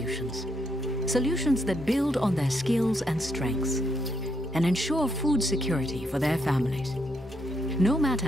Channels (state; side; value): normal; both; correlation 0.77